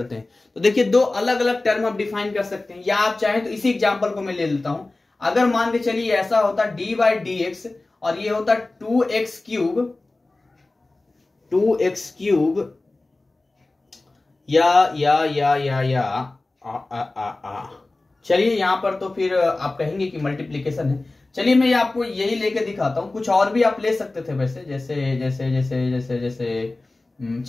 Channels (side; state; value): right; quieter; 3.1 dB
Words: हैं। तो देखिए दो अलग अलग टर्म आप डिफाइन कर सकते हैं, या आप चाहें तो इसी एग्जाम्पल को मैं ले लेता हूं। अगर मान के चलिए ऐसा होता डी बाई डी एक्स और ये होता 2x क्यूब चलिए यहां पर तो फिर आप कहेंगे कि मल्टीप्लीकेशन है। चलिए मैं आपको यही लेके दिखाता हूं, कुछ और भी आप ले सकते थे वैसे, जैसे जैसे जैसे जैसे जैसे